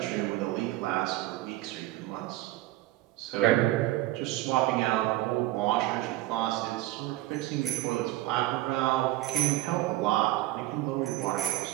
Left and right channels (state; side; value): quieter; left; 16.7 dB